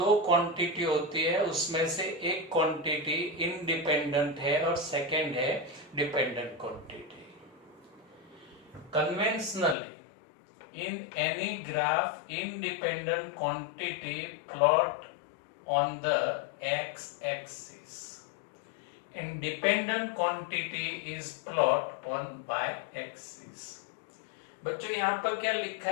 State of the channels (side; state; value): right; drops out; at 9.8 s